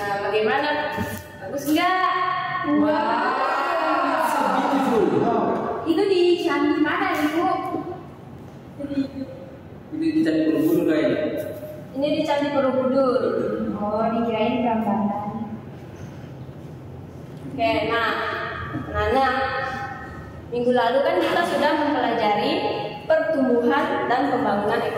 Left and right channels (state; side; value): identical; both; correlation 1.00